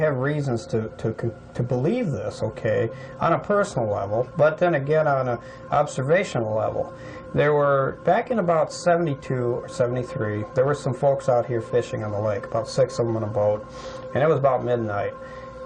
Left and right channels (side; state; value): both; identical; correlation 1.00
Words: reasons to believe this, okay, on a personal level, but then again on an observational level. There were, back in about 72 or 73, there were some folks out here fishing on the lake, about 6 of them on a boat, and it was about midnight.